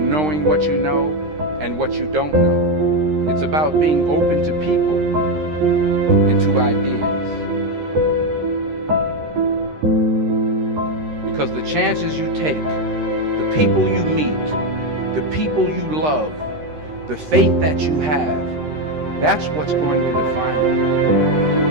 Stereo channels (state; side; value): late; left; 13 ms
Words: what you know and what you don't know. It's about being open to people and to ideas. Because the chances you take, the people you meet, the people you love, the faith that you have, that's what's going to define you.